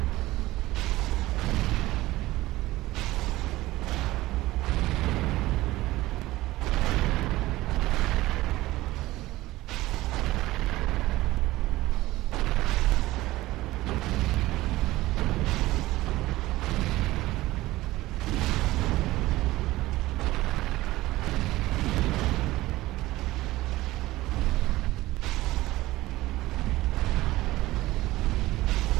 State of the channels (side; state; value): left; quieter; 17.8 dB